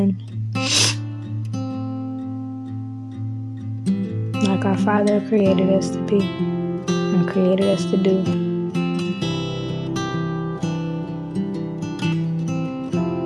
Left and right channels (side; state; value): both; identical; correlation 1.00